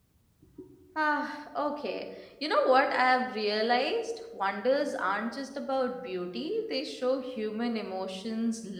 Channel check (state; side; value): identical; both; correlation 1.00